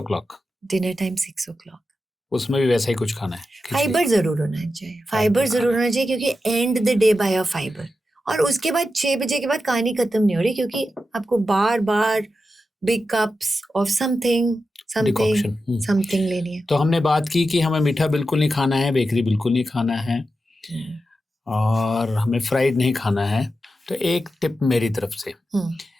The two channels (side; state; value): both; normal; correlation 0.90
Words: dinner time 6 o'clock। उसमें भी वैसा ही कुछ खाना है, खिचड़ी। फाइबर जरूर होना चाहिए, फाइबर जरूर होना चाहिए, क्योंकि and the day by a fibre. और उसके बाद 6 बजे के बाद कहानी खत्म नहीं हो रही, क्योंकि आपको बार बार big cups of something decoction. Something लेनी है। तो हमने बात की कि हमें मीठा बिल्कुल नहीं खाना है, बेकरी बिल्कुल नहीं खाना है, और हमें फ्राइड नहीं खाना है। तो एक टिप मेरी तरफ से,